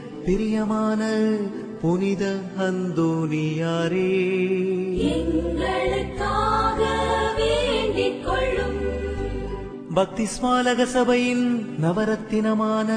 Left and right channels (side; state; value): both; identical; correlation 1.00